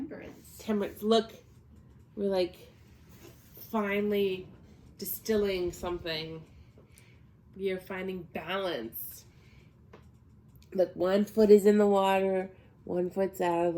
Temperance. Look, we're like finally distilling something. We are finding balance. Look, 1 foot is in the water, 1 foot's out of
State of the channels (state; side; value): identical; both; correlation 1.00